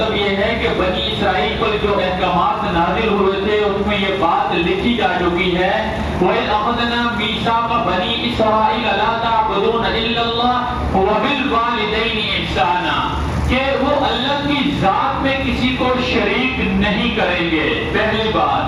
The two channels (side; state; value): both; identical; correlation 1.00